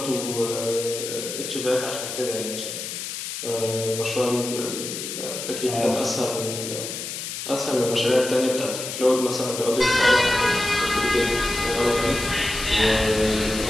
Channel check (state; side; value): noise; left; hiss, 6 dB below the sound